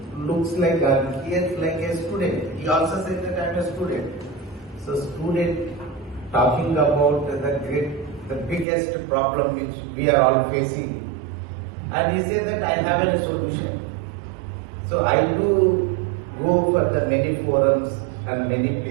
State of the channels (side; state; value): left; drops out; at 8.7 s